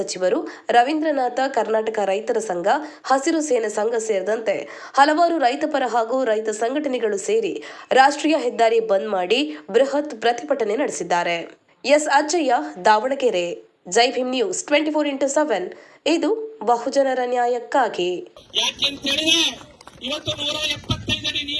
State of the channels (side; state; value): both; identical; correlation 1.00